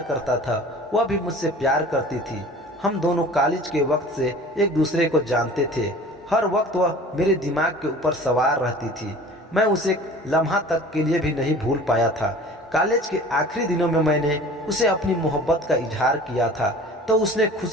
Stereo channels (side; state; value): both; normal; correlation 0.43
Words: करता था, वह भी मुझसे प्यार करती थी। हम दोनों कॉलेज के वक्त से एक दूसरे को जानते थे। हर वक्त वह मेरे दिमाग के ऊपर सवार रहती थी। मैं उसे एक लम्हा तक के लिए भी नहीं भूल पाया था। कॉलेज के आखिरी दिनों में मैंने उसे अपनी मोहब्बत का इजहार किया था तो उसने